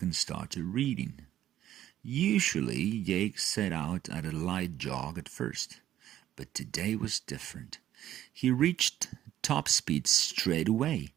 and started reading. Usually, Jake set out at a light jog at first, but today was different. He reached top speed straight away.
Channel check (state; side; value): quieter; left; 12.2 dB